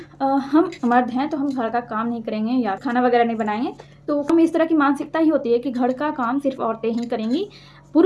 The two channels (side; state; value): both; identical; correlation 1.00